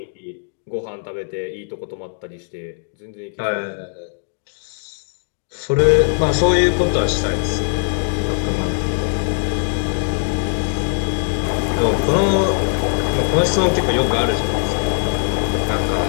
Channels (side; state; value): right; silent; digital silence